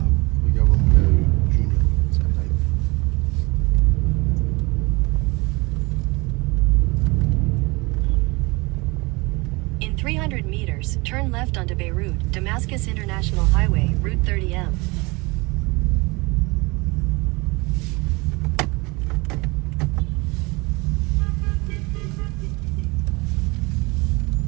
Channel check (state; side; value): quieter; left; 25.6 dB